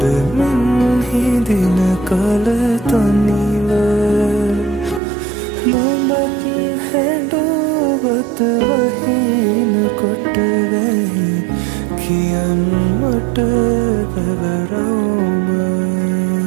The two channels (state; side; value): drops out; left; at 5.0 s